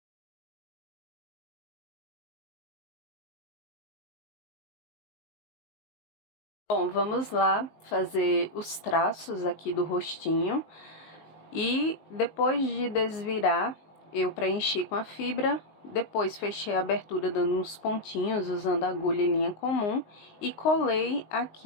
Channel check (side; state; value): right; late; 19 ms